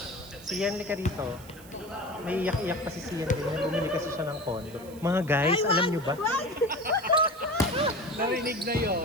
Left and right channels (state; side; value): noise; right; hiss, 21 dB below the sound